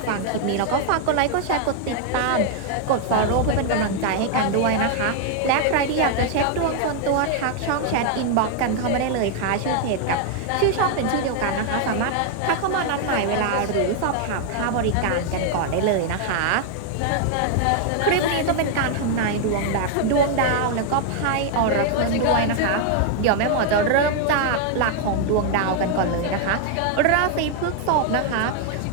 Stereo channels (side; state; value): both; different; correlation 0.00